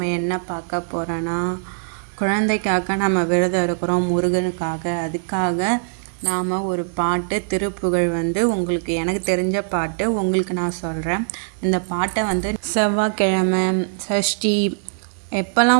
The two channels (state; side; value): silent; left; 65 dB below the other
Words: என்ன பார்க்க போகிறோன்னா, குழந்தைக்காக நம்ம விரதம் இருக்கிறோம், முருகனுக்காக. அதுக்காக நாம் ஒரு பாட்டு திருப்புகழ் உங்களுக்கு எனக்கு தெரிஞ்ச பாட்டு உங்களுக்கு நான் சொல்கிறேன். இந்த பாட்டை செவ்வாய்க்கிழமை, சஷ்டி